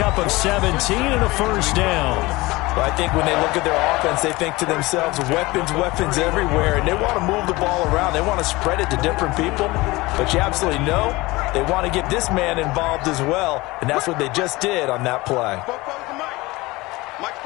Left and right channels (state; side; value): quieter; right; 21.4 dB